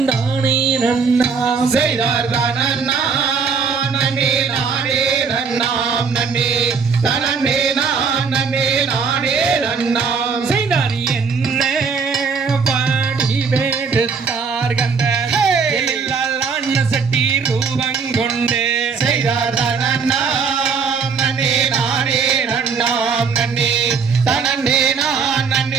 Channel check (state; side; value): quieter; left; 5.6 dB